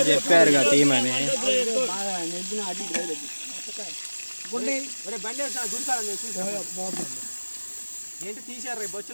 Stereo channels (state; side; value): inverted; both; correlation -1.00